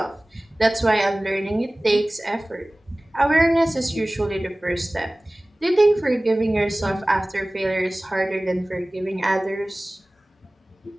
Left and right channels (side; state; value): both; normal; correlation 0.98